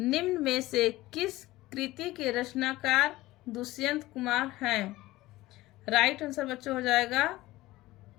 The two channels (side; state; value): right; quieter; 17.8 dB